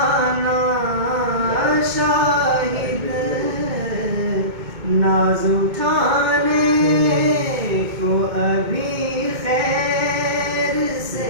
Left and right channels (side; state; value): left; late; 2.2 ms